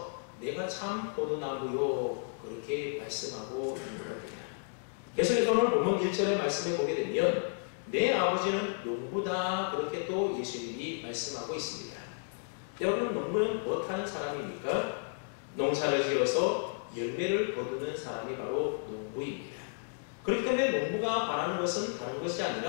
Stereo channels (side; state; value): right; silent; digital silence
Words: 내가 참 포도나무요 그렇게 말씀하고 있는 겁니다. 그래서 오늘 본문 1절의 말씀에 보게 되면 내 아버지는 농부다 그렇게 또 예수님이 말씀하고 있습니다. 여러분, 농부는 무엇하는 사람입니까? 농사를 지어서 열매를 거두는 사람이 바로 농부입니다. 그렇기 때문에 농부가 바라는 것은 다른 것이